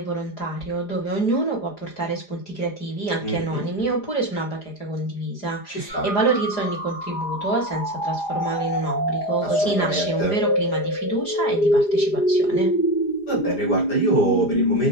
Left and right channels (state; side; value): late; right; 4.9 ms